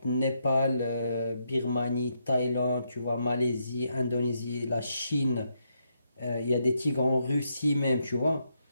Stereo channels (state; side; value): inverted; both; correlation -0.79